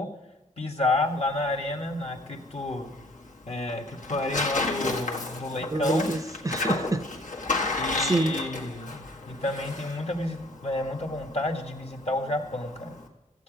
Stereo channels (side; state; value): both; normal; correlation 0.56